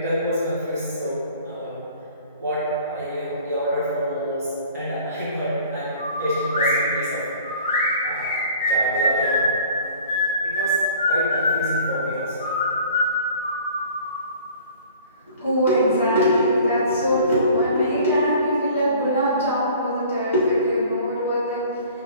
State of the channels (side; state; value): both; inverted; correlation -0.49